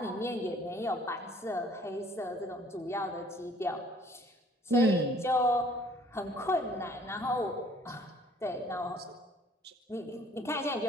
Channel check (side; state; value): both; normal; correlation 0.57